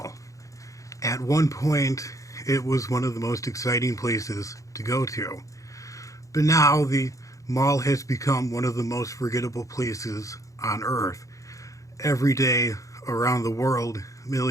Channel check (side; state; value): right; late; 0.16 ms